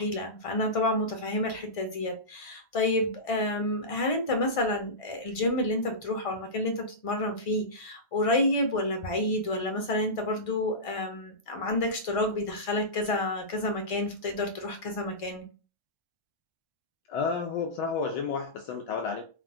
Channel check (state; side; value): late; right; 1.6 ms